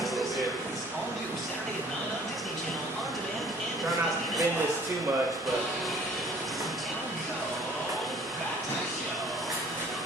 little bit. Try not to bend this too much, but...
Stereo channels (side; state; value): both; normal; correlation 0.54